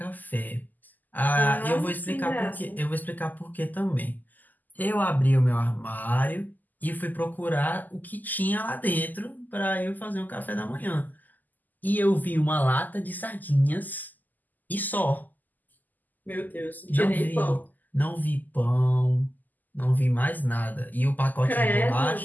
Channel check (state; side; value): late; right; 0.084 ms